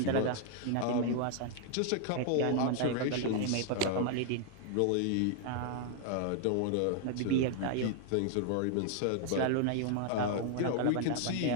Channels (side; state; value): both; different; correlation 0.00